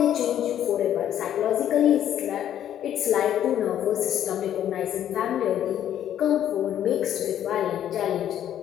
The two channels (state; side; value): quieter; right; 10.7 dB